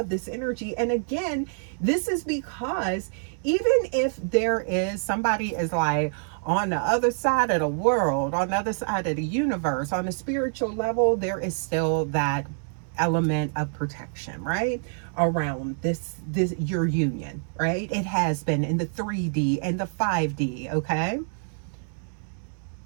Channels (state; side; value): silent; left; digital silence